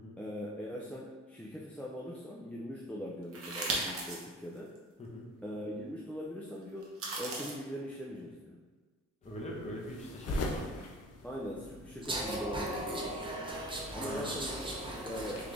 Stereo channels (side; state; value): both; normal; correlation 0.43